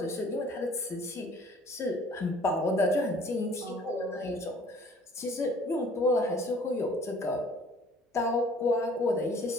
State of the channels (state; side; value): normal; both; correlation 0.54